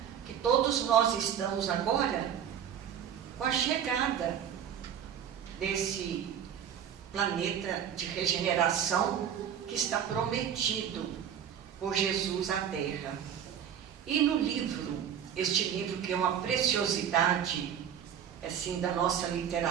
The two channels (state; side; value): quieter; left; 8.9 dB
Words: que todos nós estamos agora com a chegada desse planeta de regeneração que está prometido por Jesus à Terra. E no livro, este livro que é uma preciosidade assim, da nossa